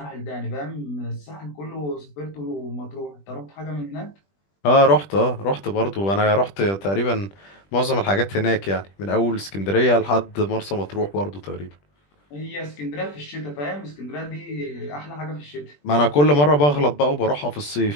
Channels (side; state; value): right; late; 20 ms